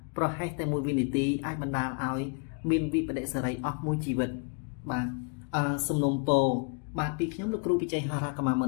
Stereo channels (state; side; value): quieter; right; 37.7 dB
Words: ប្រហែសតែមួយវិនាទីអាចបណ្ដាលឲ្យមានវិបដិសារីអស់មួយជីវិតបាទសំណុំពរបាទពីខ្ញុំលោកគ្រូពិជ័យហារ៉ាកម្មាម